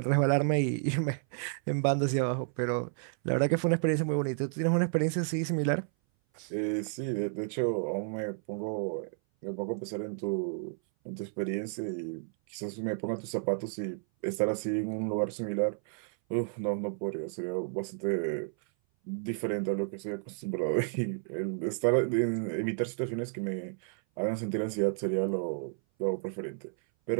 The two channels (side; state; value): left; silent; 57 dB below the other